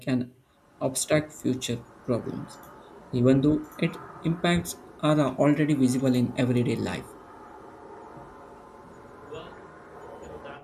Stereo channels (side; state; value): both; identical; correlation 1.00